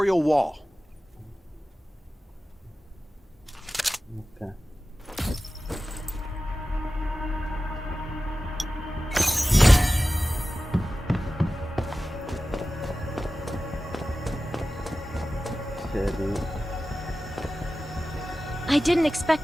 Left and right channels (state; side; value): normal; both; correlation 0.95